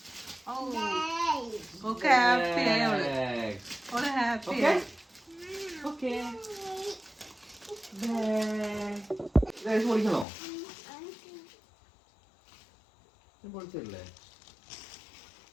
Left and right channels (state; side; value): drops out; right; at 10.2 s